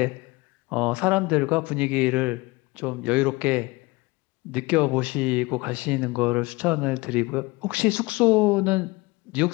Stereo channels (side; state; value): right; quieter; 23.2 dB